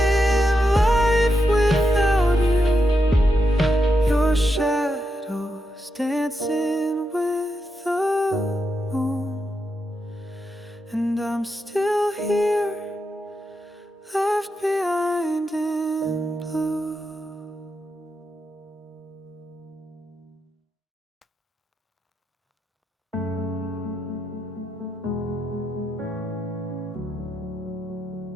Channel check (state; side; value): normal; both; correlation 0.84